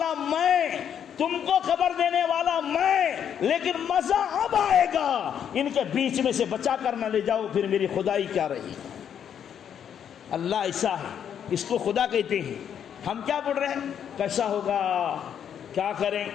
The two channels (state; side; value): quieter; right; 8.7 dB